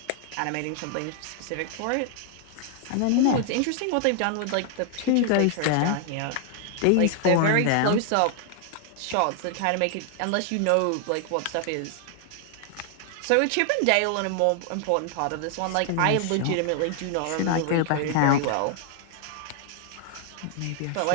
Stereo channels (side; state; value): both; different; correlation 0.00